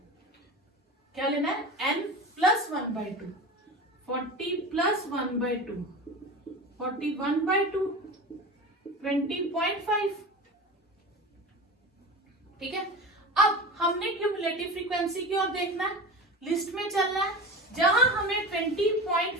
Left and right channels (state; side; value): normal; both; correlation 0.30